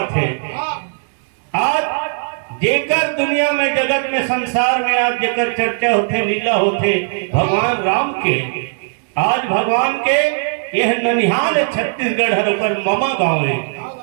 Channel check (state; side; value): silent; left; 68 dB below the other